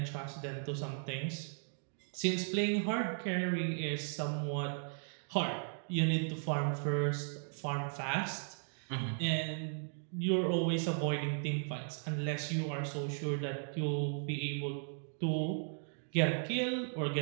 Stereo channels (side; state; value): left; silent; 53 dB below the other